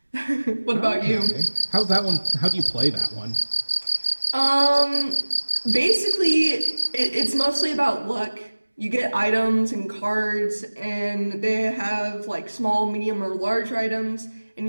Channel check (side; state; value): both; inverted; correlation -1.00